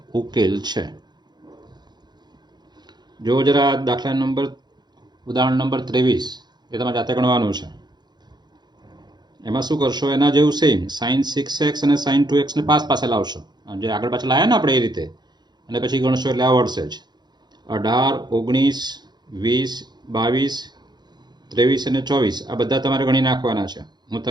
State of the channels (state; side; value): late; left; 0.21 ms